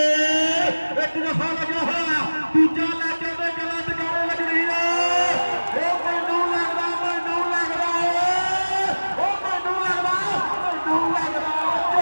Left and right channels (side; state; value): both; inverted; correlation -1.00